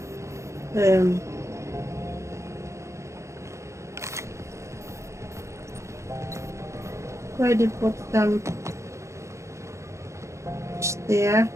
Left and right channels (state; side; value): late; left; 0.14 ms